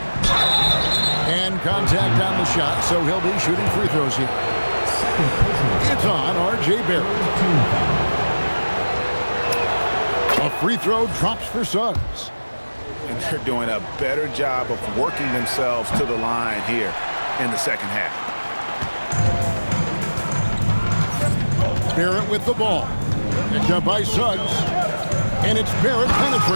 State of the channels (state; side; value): inverted; both; correlation -1.00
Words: And contact on the shot, so he'll be shooting free throws here. It's on R.J. Barrett. A free throw drops for Suggs. And they're doing a better job of working themselves to the line here in the second half. Barrett with the ball. Picked up by Suggs. And it's Barrett